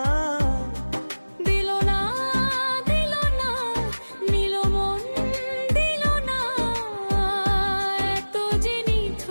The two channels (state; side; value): inverted; both; correlation -1.00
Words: দিল না দিল না নিল মন দিল না। এত যে